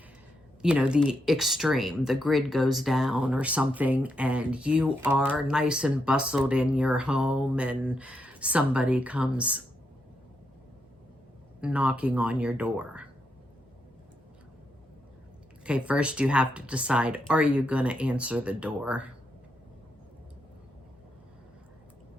you know, the extreme, the grid goes down or something, and you are nice and bustled in your home and somebody comes knocking on your door. Okay, first you have to decide, are you going to answer the door?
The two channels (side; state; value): both; normal; correlation 0.81